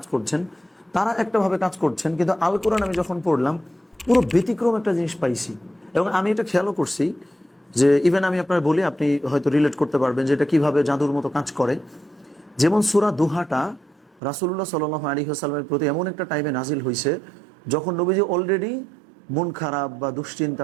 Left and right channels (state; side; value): drops out; left; at 14.2 s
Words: করছেন, তারা একটাভাবে কাজ করছেন, কিন্তু আল কোরআন আমি যখন পড়লাম পুরো ব্যতিক্রম একটা জিনিস পাইছি। এবং আমি এটা খেয়ালও করছি যে ইভেন আমি আপনার বলি, আপনি হয়তো রিলেট করতে পারবেন যে এটা কিভাবে জাদুর মতো কাজ করে। যেমন সূরা দুহাটা রাসূলুল্লাহ সাল্লাল্লাহু আলাইহি ওয়াসাল্লামের প্রতি এমন একটা টাইমে নাজিল হয়েছে যখন নবীজি অলরেডি মন খারাপ বা দুশ্চিন্তা